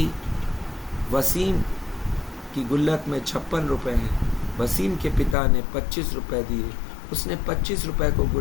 वसीम की गुल्लक में 56 रुपये हैं। वसीम के पिता ने 25 रुपये दिए, उसने 25 रुपये को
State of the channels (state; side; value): drops out; right; at 5.4 s